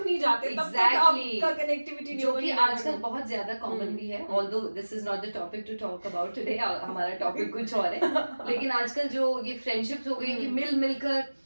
नहीं जाते, तब तक आपका कनेक्टिविटी जो कि आजकल बहुत ज्यादा कॉमन भी है, although this is not the topic to talk about today, हमारा टॉपिक कुछ और है. लेकिन आजकल जो ये फ्रेंडशिप्स हो गई कि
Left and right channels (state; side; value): inverted; both; correlation -1.00